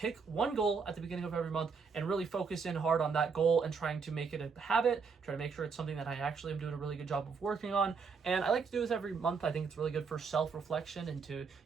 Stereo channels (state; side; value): quieter; left; 5.3 dB